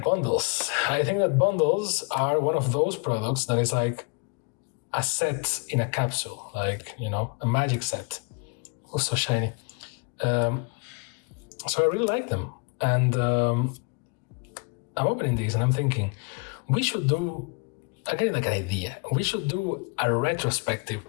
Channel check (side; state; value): right; quieter; 33.1 dB